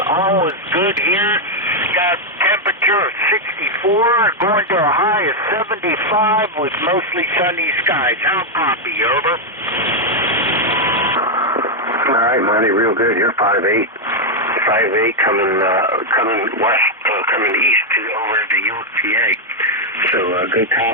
all is good here. Got temperature of 64, going to a high of 75 with mostly sunny skies. How copy? Over. All right, Monty, real good. You're 5'8". 5'8", coming west, coming east to over to York, PA. So good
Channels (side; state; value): both; normal; correlation 0.00